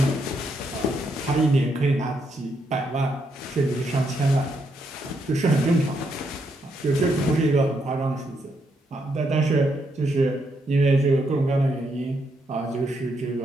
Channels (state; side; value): normal; both; correlation 0.78